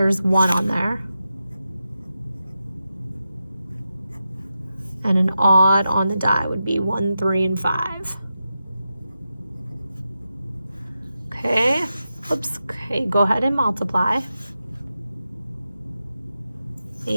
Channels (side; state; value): both; inverted; correlation -0.89